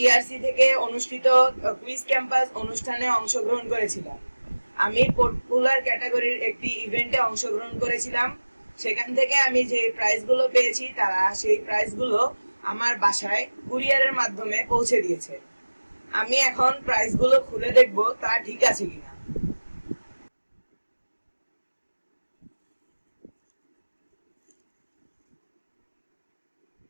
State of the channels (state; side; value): inverted; both; correlation -1.00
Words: ইআরসি থেকে অনুষ্ঠিত কুইজ ক্যাম্পাস অনুষ্ঠানে অংশগ্রহণ করেছিলাম। আমি পপুলার ক্যাটাগরির একটি ইভেন্টে অংশগ্রহণ করেছিলাম। সেখান থেকে আমি যে প্রাইজগুলো পেয়েছি তারা সেই প্রাইজগুলো আমার বাসায় কুরিয়ারের মাধ্যমে পৌঁছে দিয়েছে। আমি এখন প্রাইজগুলো খুলে দেখব তা ঠিক আছে কিনা।